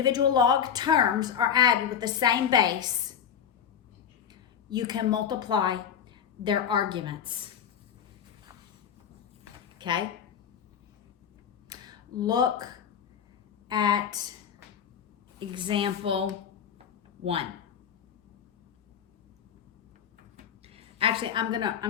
log terms are added with the same base, you can multiply their arguments. Okay? Look at example 1. Actually, I'm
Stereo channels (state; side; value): quieter; right; 8.3 dB